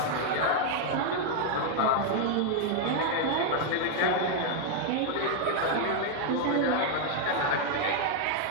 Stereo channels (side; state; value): both; different; correlation 0.00